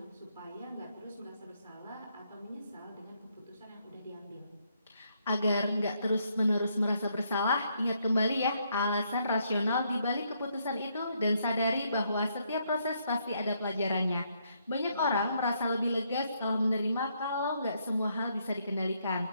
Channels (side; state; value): both; inverted; correlation -0.74